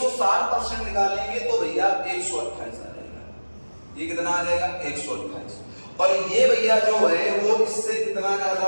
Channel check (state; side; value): inverted; both; correlation -1.00